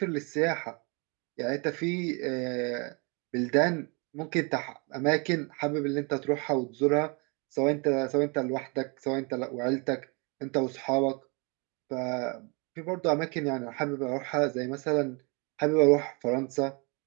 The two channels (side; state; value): left; quieter; 31.7 dB